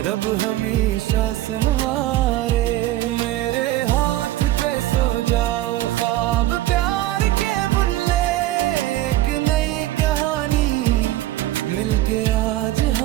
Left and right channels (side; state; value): left; quieter; 15.2 dB